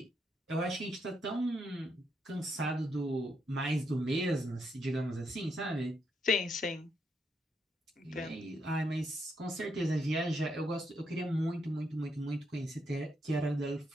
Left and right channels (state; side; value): normal; both; correlation 0.79